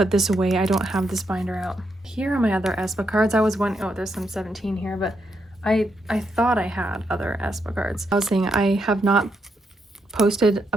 this away. I don't have this binder out. Here are my other aespa cards. I was wondering, oh, there's some 17 here, but I thought I had other aespa cards. I was saying I have not posted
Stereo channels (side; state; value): both; normal; correlation 0.80